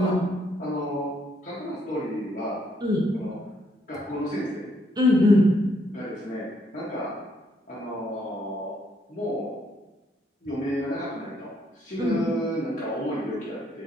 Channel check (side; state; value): both; normal; correlation 0.72